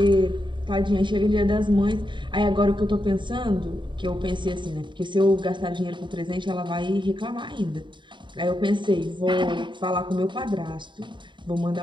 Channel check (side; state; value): left; late; 0.23 ms